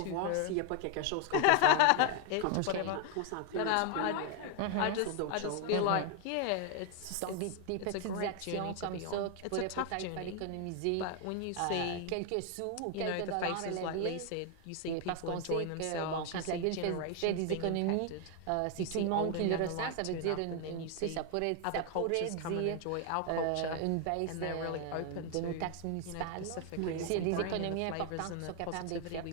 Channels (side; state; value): both; different; correlation 0.01